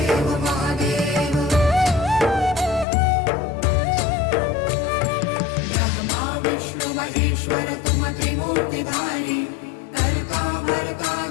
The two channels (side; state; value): right; drops out; at 2.9 s